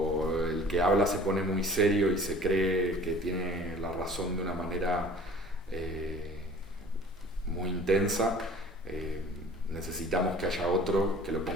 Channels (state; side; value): normal; both; correlation 0.48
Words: el que habla se pone muy serio y se cree que tiene la razón de una manera muy intensa, necesitamos que haya otro que lo